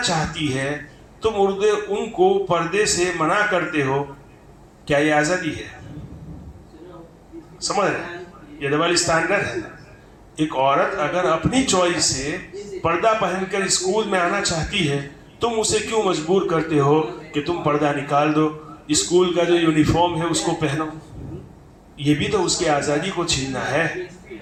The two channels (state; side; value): identical; both; correlation 1.00